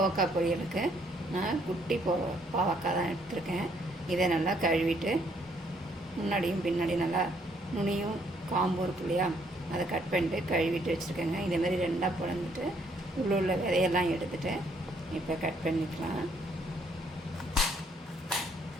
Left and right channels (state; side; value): normal; both; correlation 0.68